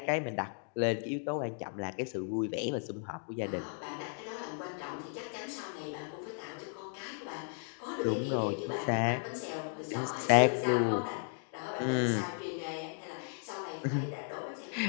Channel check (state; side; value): silent; right; 54 dB below the other